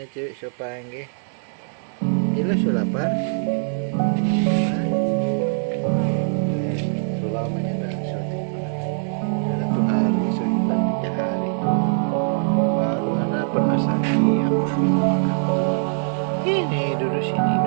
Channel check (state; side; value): silent; left; digital silence